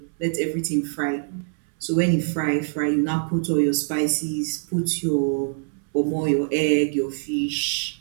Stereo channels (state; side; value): silent; left; 63 dB below the other